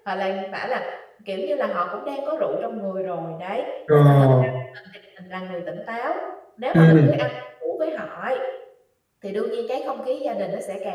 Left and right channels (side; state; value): both; identical; correlation 1.00